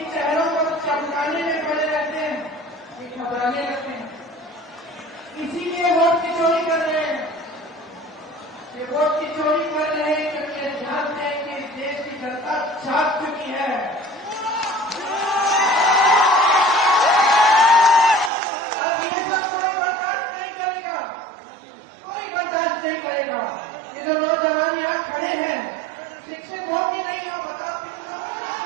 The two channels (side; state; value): left; drops out; at 18.3 s